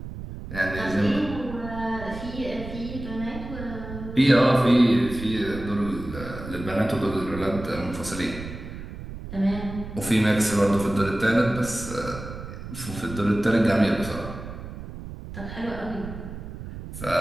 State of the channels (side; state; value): right; noise; rumble, 11 dB below the sound